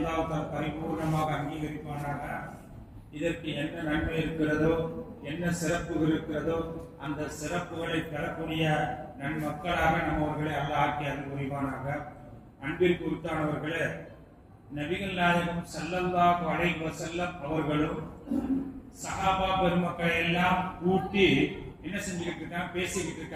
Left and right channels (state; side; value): identical; both; correlation 1.00